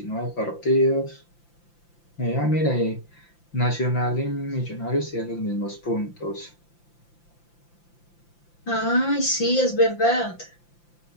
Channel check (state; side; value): late; right; 5.8 ms